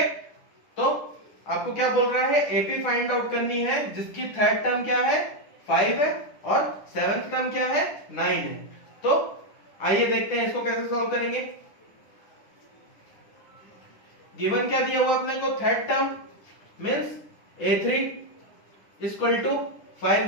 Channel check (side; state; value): right; late; 10 ms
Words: तो आपको क्या बोल रहा है, एपी फाइंड आउट करनी है जिसकी थर्ड टर्म क्या है 5 है और सेवेंथ टर्म क्या है 9 है। तो आइए देखते हैं इसको कैसे सॉल्व करेंगे। गिवन क्या दिया हुआ अपने को, third term means A3 equal to